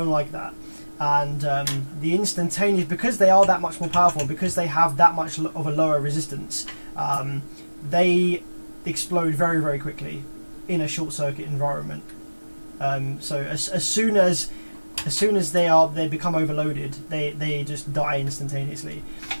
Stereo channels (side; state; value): both; inverted; correlation -1.00